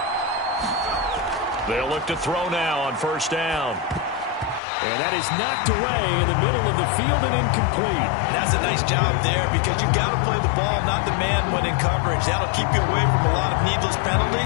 They'll look to throw now on first down. And that is knocked away in the middle of the field and incomplete. That's a nice job there because you've got to play the ball, not the man when in coverage. That'll keep you away from a lot of needless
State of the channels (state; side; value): drops out; right; at 4.6 s